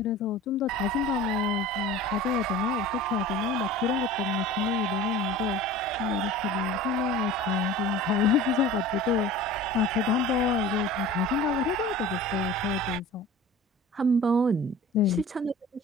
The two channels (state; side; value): normal; both; correlation 0.39